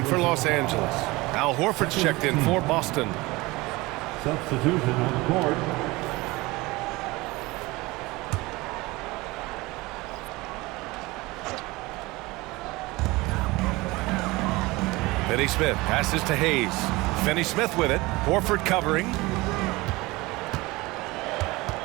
for Los Angeles. Al Horford's checked in for Boston. Substitution on the court. Finney Smith passes to Hayes. Finney Smith with it. Horford covering.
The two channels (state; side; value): quieter; left; 21.9 dB